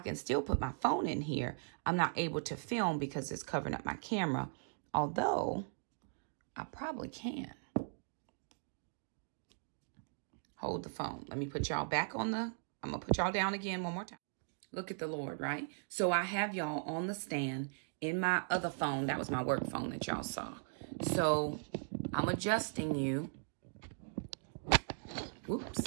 still put my phone in here. I'm not able to film because it's covering up my camera. Although, I probably can. Hold the phone. Let me put y'all back on the, I'm going to put y'all down again one more time. Look at the Lord, right? So I have y'all on the stand in my other phone. That was my work phone that y'all saw. So I'm adjusting you. Whoops.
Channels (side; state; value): left; silent; digital silence